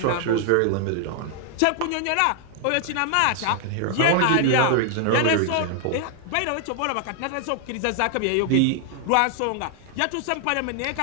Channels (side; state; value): both; different; correlation 0.00